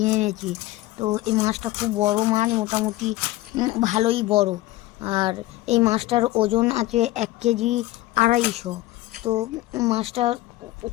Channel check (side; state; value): right; quieter; 17.3 dB